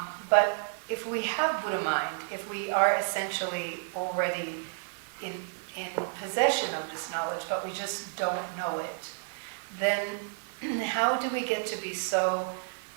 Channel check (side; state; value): left; silent; digital silence